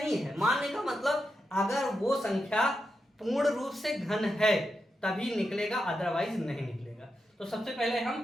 है, मान्य का मतलब अगर वो संख्या पूर्ण रूप से घन है तभी निकलेगा, अदरवाइज नहीं निकलेगा। तो सबसे पहले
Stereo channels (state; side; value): normal; both; correlation 0.87